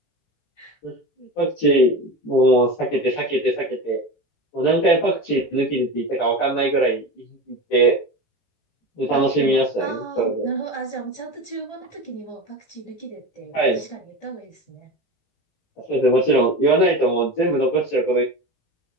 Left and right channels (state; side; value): late; right; 18 ms